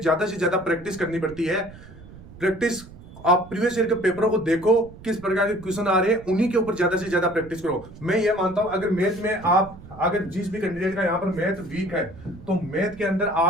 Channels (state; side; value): noise; right; rumble, 18 dB below the sound